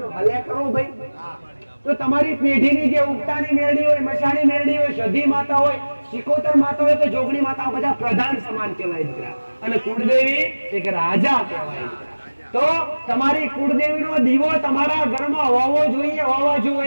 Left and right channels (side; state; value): both; inverted; correlation -1.00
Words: હલે કરો ભાઈ. તો તમારી પેઢીની જે ઉગતાની મેરડી હોય, મસાણી મેરડી હોય, સધી માતા હોય, સિકોતર માતા હોય કે જોગણી માતા બધા પ્રધાન સમાન કહેવાય દીકરા. અને કુળદેવી એક રાજા કહેવાય. તો તમારી કુળદેવીનો દીવો તમારા ઘરમાં હોવો જોઈએ, હોવા